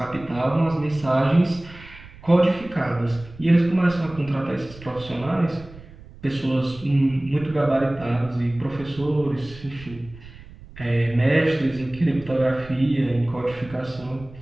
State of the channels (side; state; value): right; noise; rumble, 19 dB below the sound